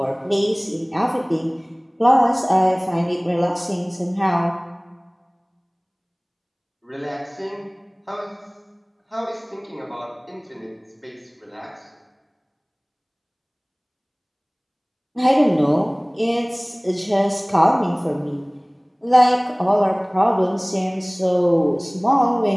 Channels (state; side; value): identical; both; correlation 1.00